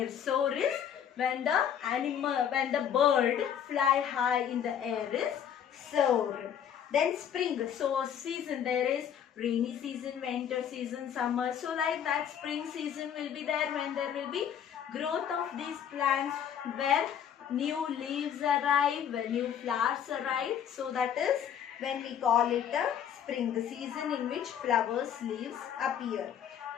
Soar is when the bird fly high in the air is soar. Then spring, so season, there is rainy season, winter season, summer. So like that, spring season will be there when there will be growth of these plants, where new leaves arrive, when new flowers arrive. So that is when we call it a spring, the season in which flowers, leaves appear.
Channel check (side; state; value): right; quieter; 8.9 dB